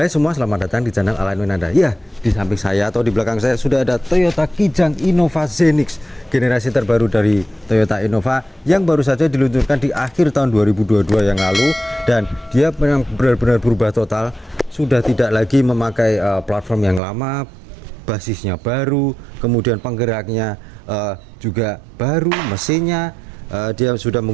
semua, selamat datang di channel Alignment Anda. Ya, di samping saya atau di belakang saya sudah ada Toyota Kijang Innova Zenix, generasi terbaru dari Toyota Innova yang baru saja diluncurkan di akhir tahun 2022 yang lalu, dan dia memang benar-benar berubah total. Sudah tidak lagi memakai platform yang lama, basisnya baru, kemudian penggeraknya juga baru, mesinnya dia sudah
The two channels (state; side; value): drops out; left; at 17.0 s